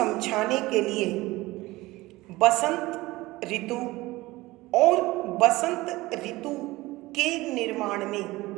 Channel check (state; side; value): quieter; left; 19.6 dB